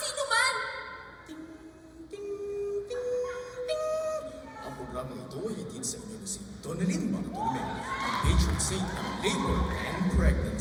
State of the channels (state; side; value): identical; both; correlation 1.00